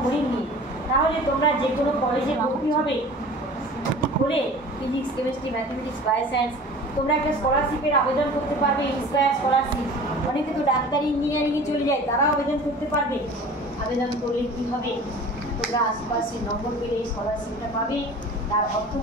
গণিত নিয়ে, তাহলে তোমরা যে কোনো কলেজে ভর্তি হবে হলে ফিজিক্স, কেমিস্ট্রি, ম্যাথমেটিক্স, বায়োসায়েন্স, তোমরা একটা স্কলারশিপের আবেদন করতে পারবে, ইন্সপায়ার স্কলারশিপ। অনেকে তো ডাক্তারি, ইঞ্জিনিয়ারিংয়ে চলে যায়, তারাও আবেদন করতে পারবে। আবেদন করলে কী হবে? তোমরা আশেপাশে নম্বর পেলে এই স্কলারশিপটা পাবে। তার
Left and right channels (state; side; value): normal; both; correlation 0.42